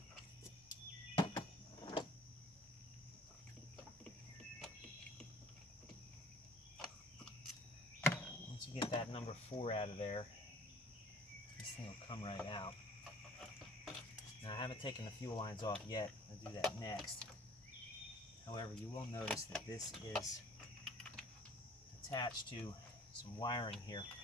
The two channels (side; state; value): both; normal; correlation 0.53